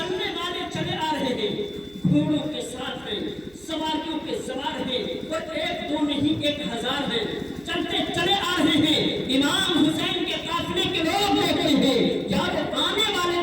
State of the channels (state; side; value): noise; right; hum, 27 dB below the sound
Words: والے چلے آ رہے ہیں، گھوڑوں کے ساتھ ہیں، سواریوں کے سوار ہیں، اور ایک دو نہیں 1000 ہیں، چلتے چلے آ رہے ہیں۔ امام حسین کے قافلے کے لوگ دیکھتے ہیں، یاد آنے والے